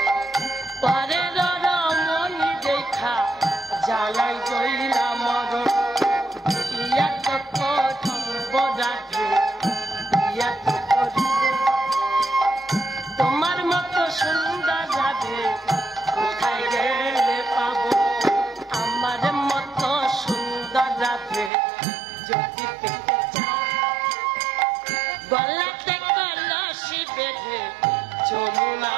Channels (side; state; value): left; drops out; at 21.5 s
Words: পরের রমণী দেখা জ্বালাই জইলা মরণ। দিয়া তো করিব রাধে দিয়া তো করিব, তোমার মতো সুন্দর রাধে কোথায় গেলে পাবো? আমার মতো সুন্দর রাধে যদি পেতে চাও, গলাতে কলসি বেঁধে